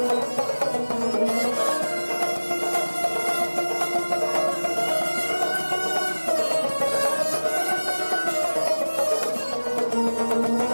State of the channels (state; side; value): inverted; both; correlation -1.00